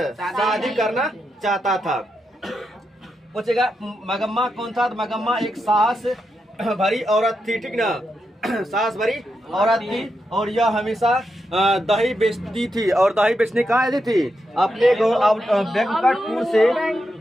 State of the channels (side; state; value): both; normal; correlation 0.85